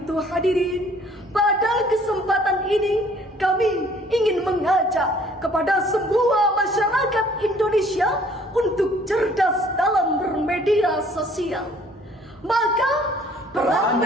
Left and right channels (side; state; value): both; normal; correlation 0.57